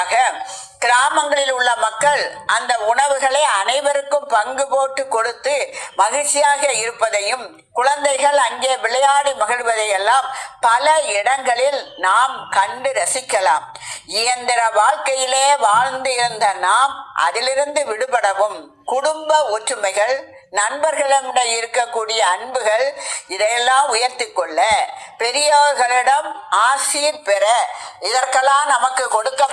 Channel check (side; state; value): both; identical; correlation 1.00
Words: கிராமங்களில் உள்ள மக்கள் அந்த உணவுகளை அனைவருக்கும் பங்கு போட்டு கொடுத்து மகிழ்ச்சியாக இருப்பதையும், குழந்தைகள் அங்கே விளையாடி மகிழ்வதையெல்லாம் பல இடங்களில் நாம் கண்டு ரசிக்கலாம். இயந்திர வாழ்க்கையிலே வாழ்ந்து இருந்த நாம் அதிலிருந்து விடுபடவும், குடும்ப ஒற்றுமைகள், நண்பர்களிடம் இருக்கக்கூடிய அன்புகள் இதையெல்லாம் உயர்த்தி கொள்ள, பெரியவர்களிடம் ஆசீர் பெற, இதற்கெல்லாம் நமக்கு